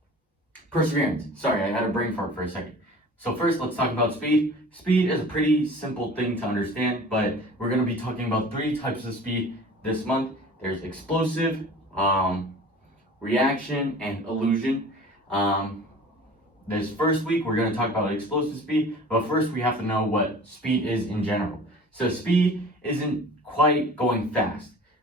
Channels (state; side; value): normal; both; correlation 0.43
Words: perseverance. Sorry, I had a brain fart for a second. So first, let's talk about speed. Speed is a pretty simple thing to understand, but we're going to be talking about 3 types of speed this month. There's explosive, reaction, and illusion. This first week, we're going to talk about explosive speed, but first we have to know what speed is in general. So speed isn't quite going fast.